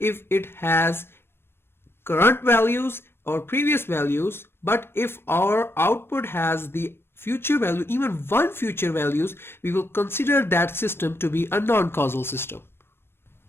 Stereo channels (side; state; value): right; late; 0.11 ms